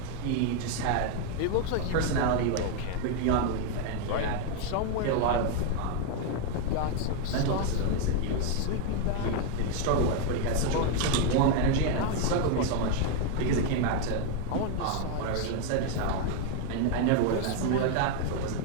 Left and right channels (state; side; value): different; both; correlation 0.01